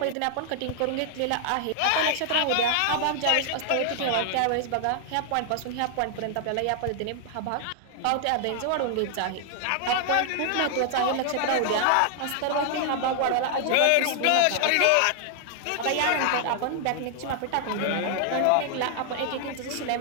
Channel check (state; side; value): different; both; correlation 0.00